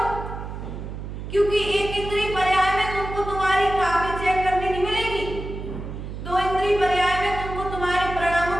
क्योंकि एक इंद्रिय पर्याय में तुमको तुम्हारी कॉपी चेक करने नहीं मिलेगी, दो इंद्रिय पर्याय में तुमको तुम्हारे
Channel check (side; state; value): right; noise; hum, 8 dB below the sound